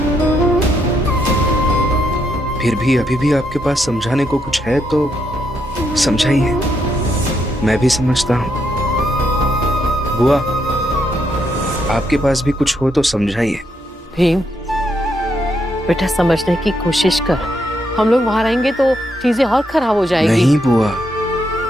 फिर भी अभी भी आपके पास समझाने को कुछ है तो समझाइए। मैं भी समझता हूं। बुआ, आपके पास भी कुछ हो तो समझाइए। भीम, बेटा समझने की कोशिश कर। हम लोग वहां रहेंगे तो चीजें और खराब हो जाएगी। नहीं बुआ,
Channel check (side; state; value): both; normal; correlation 0.78